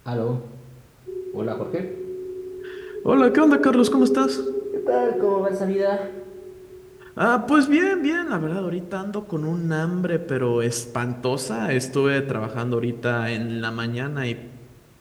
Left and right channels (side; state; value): both; identical; correlation 1.00